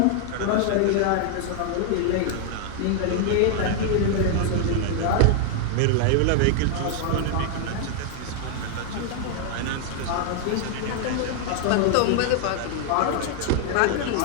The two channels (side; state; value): both; different; correlation 0.00